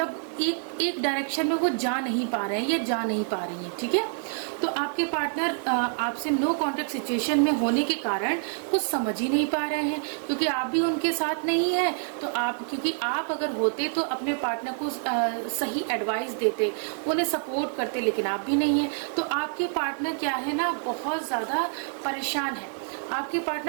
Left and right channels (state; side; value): silent; left; digital silence